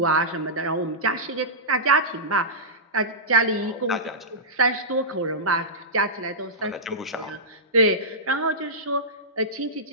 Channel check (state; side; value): normal; both; correlation -0.15